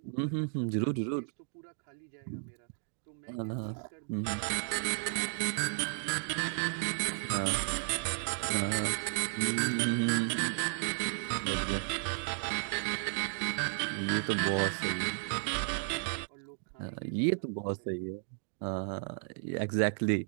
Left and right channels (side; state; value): left; silent; digital silence